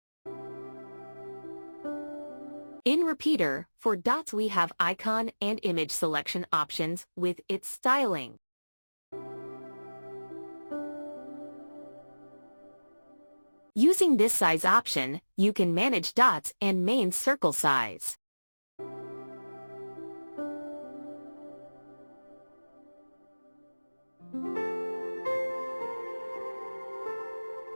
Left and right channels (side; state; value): both; inverted; correlation -1.00